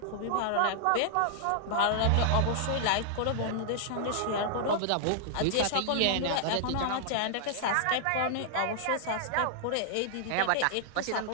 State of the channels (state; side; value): different; both; correlation -0.01